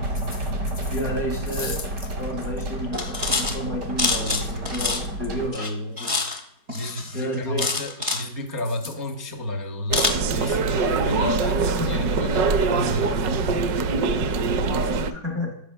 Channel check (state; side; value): late; left; 4.7 ms